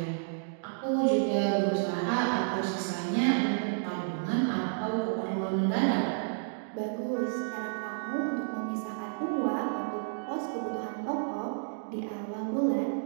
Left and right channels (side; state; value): left; silent; digital silence